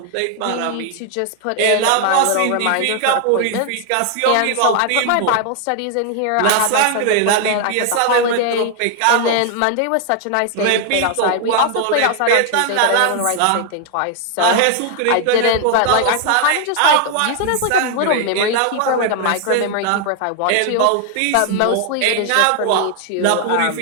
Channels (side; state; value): both; different; correlation 0.00